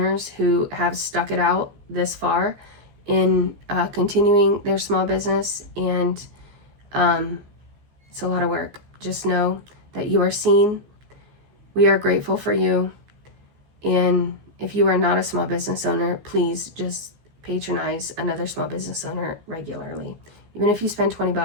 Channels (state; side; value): late; left; 15 ms